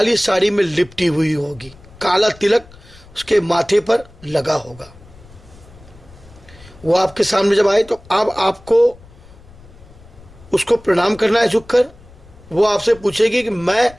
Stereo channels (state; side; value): noise; left; rumble, 23 dB below the sound